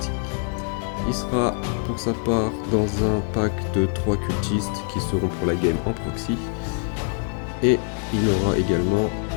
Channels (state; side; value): quieter; right; 36.8 dB